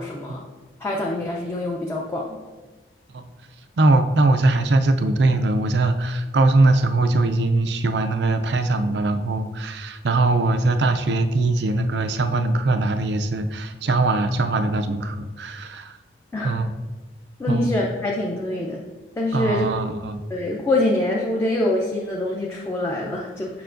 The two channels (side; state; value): both; normal; correlation 0.69